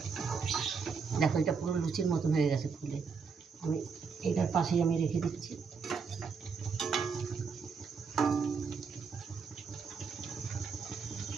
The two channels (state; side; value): quieter; left; 5.5 dB